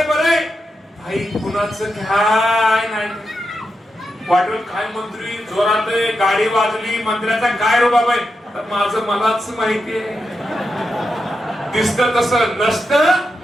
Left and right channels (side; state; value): both; normal; correlation 0.87